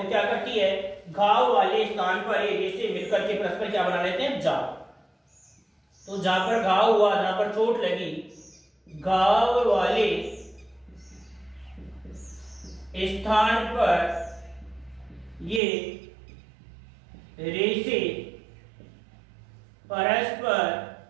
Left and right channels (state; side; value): drops out; left; at 15.6 s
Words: क्या करती है? घाव वाले स्थान पर ये रेशे मिलकर के परस्पर क्या बना लेते हैं? जाल। तो जहां पर घाव हुआ, जहां पर चोट लगी, घाव वाले स्थान पर ये रेशे परस्पर